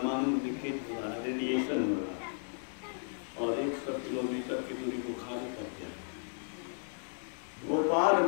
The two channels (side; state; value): right; silent; digital silence